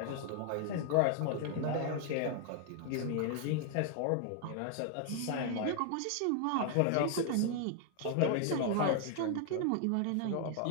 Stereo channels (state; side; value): different; both; correlation 0.00